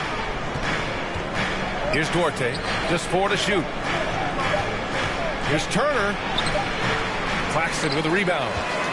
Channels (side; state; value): both; identical; correlation 1.00